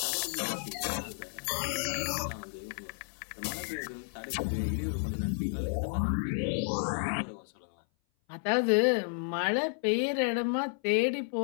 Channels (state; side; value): silent; right; 56 dB below the other